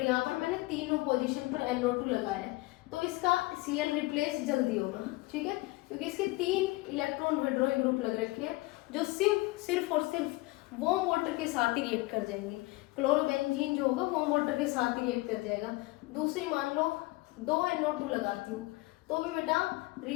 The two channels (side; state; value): right; quieter; 21.4 dB